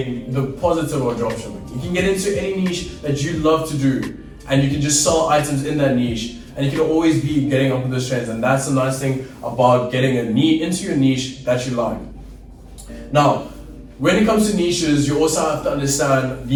positive of dropshipping. You can get into any niche that you love to do, and you can just sell items in that niche, and you can always be getting up with those trends. And that's the nice thing about getting into your niche that you like. Now, when it comes to niches, you also have to understand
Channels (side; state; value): both; identical; correlation 1.00